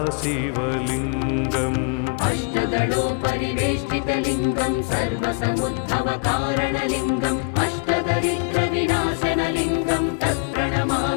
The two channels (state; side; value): quieter; right; 39.4 dB